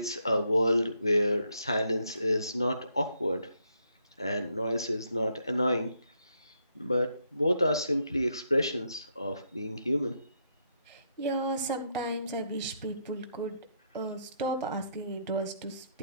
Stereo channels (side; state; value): both; inverted; correlation -0.76